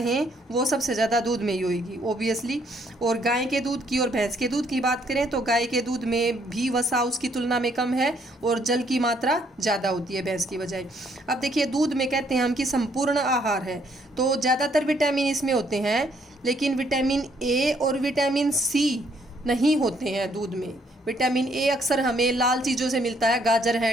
वो सबसे ज़्यादा दूध में ही होगी ओबियसली। और गाय के दूध की और भैंस के दूध की बात करें तो गाय के दूध में भी वसा उसकी तुलना में कम है और जल की मात्रा ज़्यादा होती है भैंस की बजाय। अब देखिए, दूध में कहते हैं हम कि संपूर्ण आहार है, तो ज़्यादातर विटामिन इसमें होते हैं, लेकिन विटामिन ए और विटामिन सी नहीं होते हैं दूध में। विटामिन ए अक्सर हमें लाल चीज़ों से मिलता है, गाजर है,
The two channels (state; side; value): normal; both; correlation 0.68